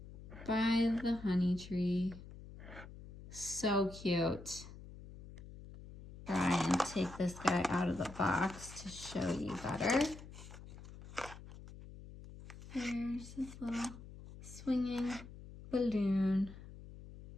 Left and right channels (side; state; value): left; noise; hum, 15 dB below the sound